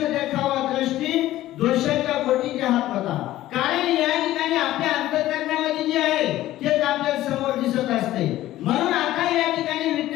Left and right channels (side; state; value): right; quieter; 14.8 dB